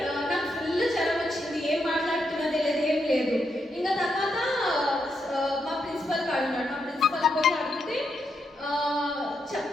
నాకు ఫుల్ జ్వరం వచ్చింది, ఏం మాట్లాడుతున్నా తెలియదు, ఏం లేదు. ఇంకా తర్వాత మా ప్రిన్సిపల్ కాడు ఉన్నాడు. మా ప్రిన్సిపల్ పోయి అడిగితే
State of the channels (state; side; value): normal; both; correlation 0.81